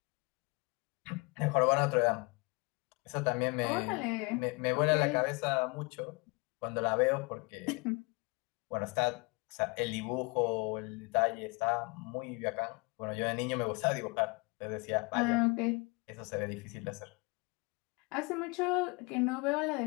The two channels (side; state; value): right; quieter; 29.6 dB